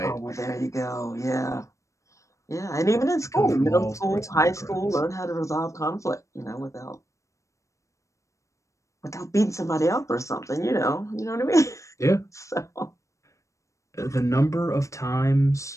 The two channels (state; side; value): late; right; 0.15 ms